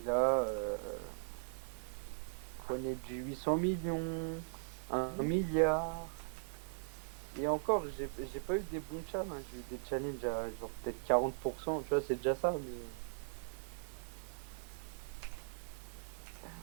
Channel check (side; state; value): left; silent; digital silence